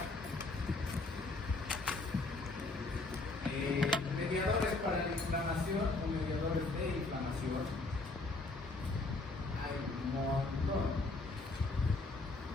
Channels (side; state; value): right; quieter; 3.3 dB